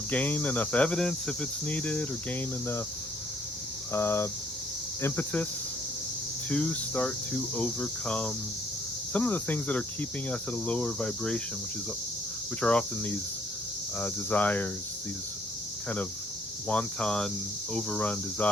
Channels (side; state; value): both; normal; correlation 0.65